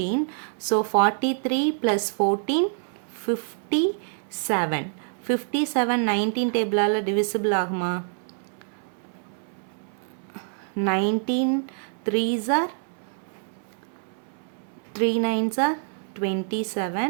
ஸோ 43 + 14 57. 57 19 டேபிளால் டிவிசிபிள் ஆகுமா? 19 3s are 3 9s are 27.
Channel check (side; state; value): left; silent; 61 dB below the other